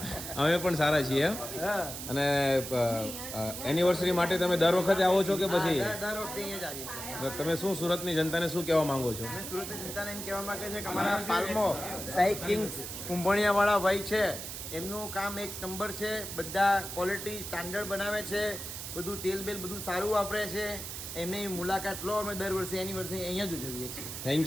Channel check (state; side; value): noise; right; hiss, 8 dB below the sound